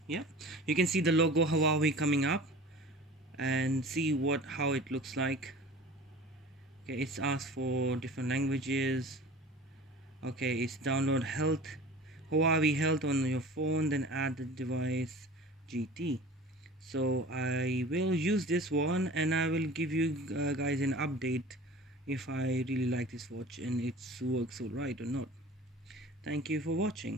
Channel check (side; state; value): both; normal; correlation 0.40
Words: Yeah, you can see the logo Huawei coming up and see how it looks like. Okay, it's asked for different languages. Okay, it's download Huawei Health on your phone, then add the device GT. So I will use this one and I will give you guys an update if I really like this watch and it works alright or not. Thank you for